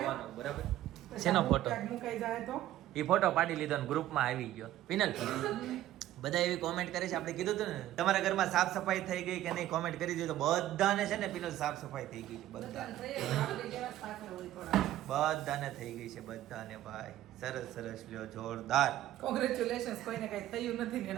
બરાબર. શેનો ફોટો? ક્યાંક મુકાઈ જાય તો એ ફોટો પાડી લીધો ને ગ્રુપમાં આવી ગયો. પિનલ બધા એવી કોમેન્ટ કરે છે, આપણે કીધું હતું ને તમારા ઘરમાં સાફ સફાઈ થઈ ગઈ કે નહીં, કોમેન્ટ કરી દીધું. બધાને છે ને પિનલ સાફ સફાઈ થઈ ગઈ છે. બધાને બધાને થઈ ગઈ છે. બધાને ભાઈ સરસ સરસ લ્યો, જોરદાર. કોંગ્રેચ્યુલેશન્સ. કોઈને કઈ થયું નથી ને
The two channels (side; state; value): left; quieter; 13.6 dB